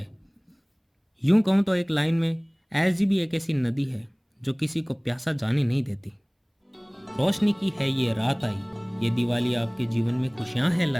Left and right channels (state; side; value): identical; both; correlation 1.00